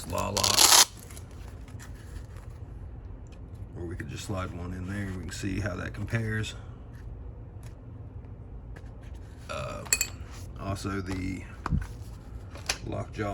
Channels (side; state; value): both; identical; correlation 1.00